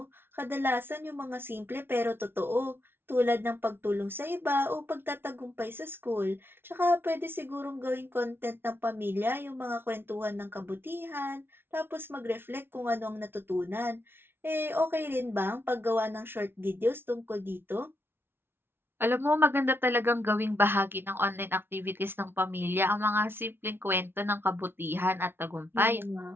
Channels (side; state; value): left; late; 0.11 ms